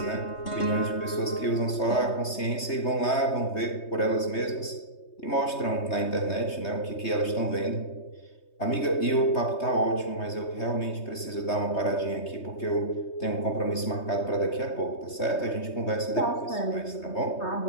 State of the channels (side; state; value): right; late; 3.2 ms